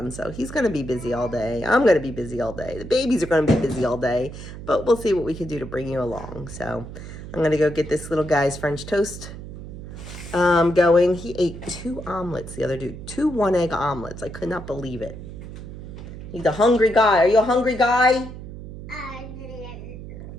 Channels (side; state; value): right; noise; hum, 12 dB below the sound